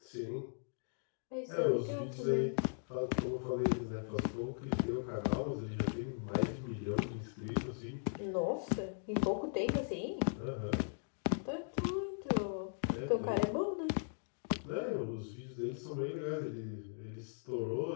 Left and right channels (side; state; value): right; silent; digital silence